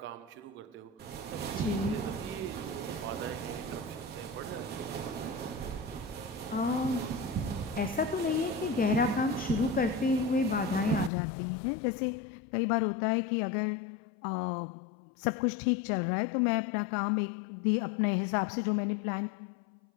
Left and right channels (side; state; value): right; drops out; at 11.1 s